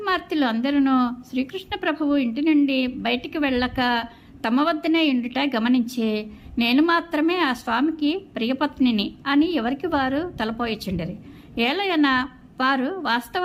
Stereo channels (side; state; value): both; identical; correlation 1.00